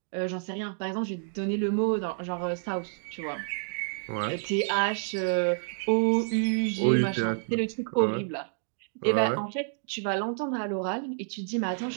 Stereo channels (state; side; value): silent; left; digital silence